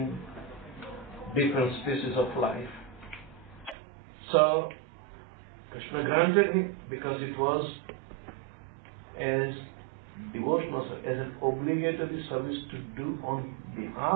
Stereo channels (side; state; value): left; drops out; at 3.8 s